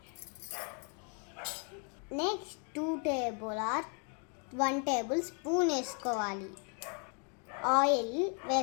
నెక్స్ట్ 1 టేబుల్ స్పూన్ వేసుకోవాలి. ఆయిల్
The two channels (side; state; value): right; quieter; 39.7 dB